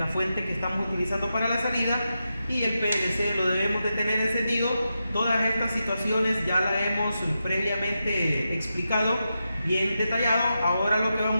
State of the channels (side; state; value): both; inverted; correlation -0.88